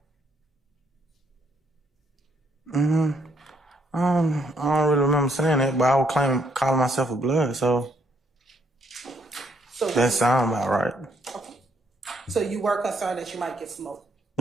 I don't really remember saying it, but I would calling myself a blood, so that sounds about right. Okay. So you were concerned that you might get smoked?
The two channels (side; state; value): both; normal; correlation 0.71